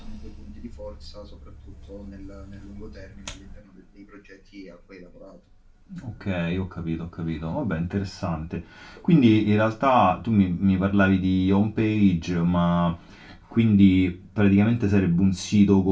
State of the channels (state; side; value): identical; both; correlation 1.00